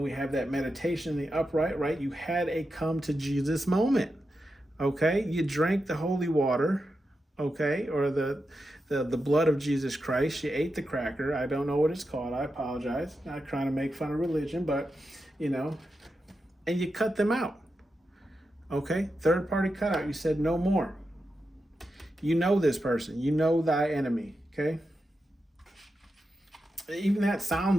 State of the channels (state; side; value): normal; both; correlation 0.88